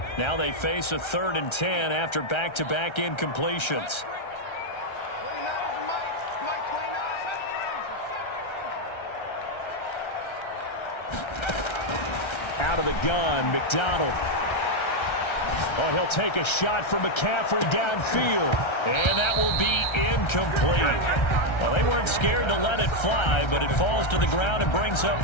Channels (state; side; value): late; right; 1.3 ms